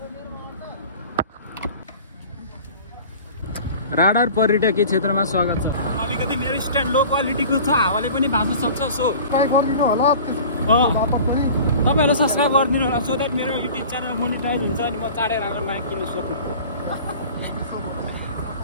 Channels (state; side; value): inverted; both; correlation -0.42